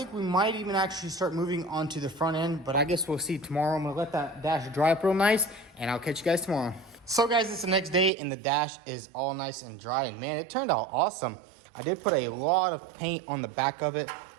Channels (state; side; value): drops out; left; at 8.1 s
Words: we might even actually start moving on to the front end, but I guess we'll see tomorrow. I'm gonna let that dash dry up real nice, and I'll catch you guys tomorrow. So guys, it's the next day, and the dash is all nice and dry, and man, it turned out awesome. I did put a lot of paint on the back of it,